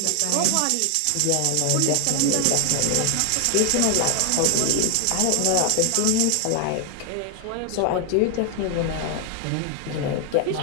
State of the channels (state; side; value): different; both; correlation 0.00